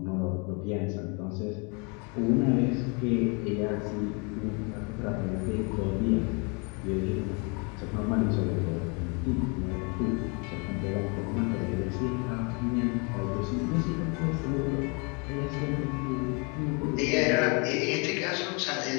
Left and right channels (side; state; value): right; quieter; 33.2 dB